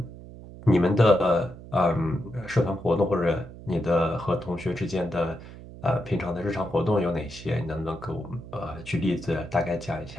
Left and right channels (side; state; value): right; noise; hum, 15 dB below the sound